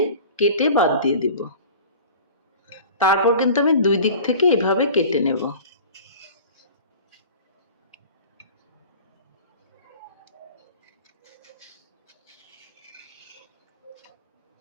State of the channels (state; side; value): inverted; both; correlation -0.41